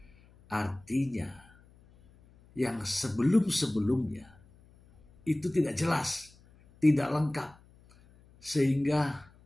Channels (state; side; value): noise; left; hum, 27 dB below the sound